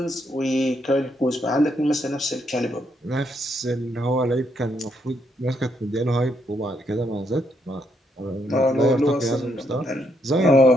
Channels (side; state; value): both; normal; correlation 0.76